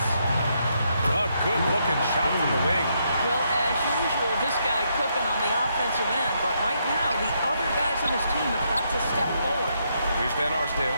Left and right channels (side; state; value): both; inverted; correlation -0.77